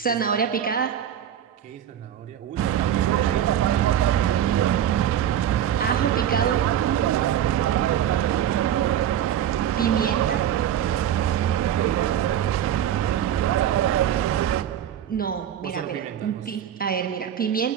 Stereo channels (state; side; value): quieter; left; 10.3 dB